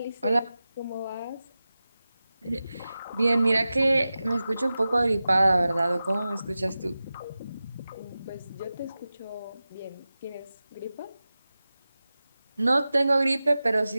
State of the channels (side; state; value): both; inverted; correlation -0.95